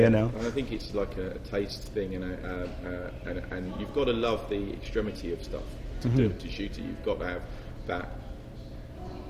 you know? And I think it's like a taste thing, and you've got to love the extremity of stuff. To shoot it, you've got to have that.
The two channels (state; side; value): identical; both; correlation 1.00